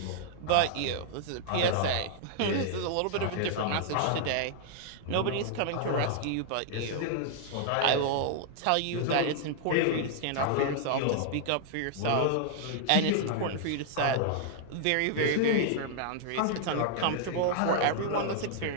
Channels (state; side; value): different; both; correlation -0.01